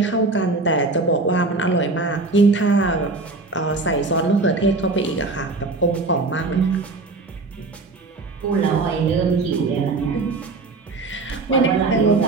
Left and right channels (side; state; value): left; quieter; 3.5 dB